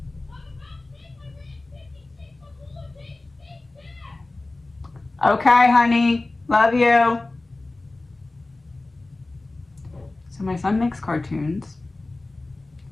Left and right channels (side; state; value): right; quieter; 3.0 dB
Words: Okay, honey. Love you. So my son makes cartoons,